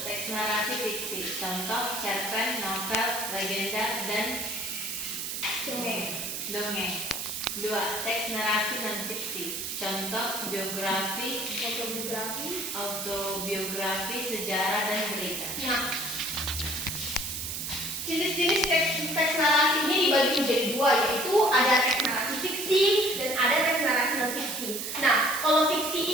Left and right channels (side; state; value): right; noise; hiss, 4 dB below the sound